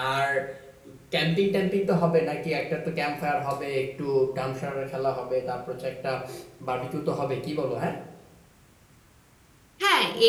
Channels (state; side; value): identical; both; correlation 1.00